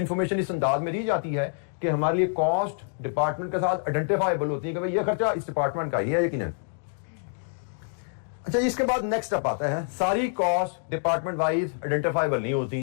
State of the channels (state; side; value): silent; right; 60 dB below the other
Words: इस अंदाज में दी जाती है कि हमारे लिए कॉस्ट डिपार्टमेंट के साथ आइडेंटिफाइबल होती है कि भाई ये खर्चा इस डिपार्टमेंट का ही है यकीनन। अच्छा, इसके बाद नेक्स्ट स्टेप आता है, सारी कॉस्ट डिपार्टमेंट वाइज आइडेंटिफाइबल नहीं